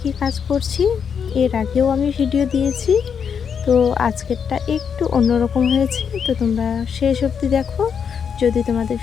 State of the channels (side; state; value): right; quieter; 7.0 dB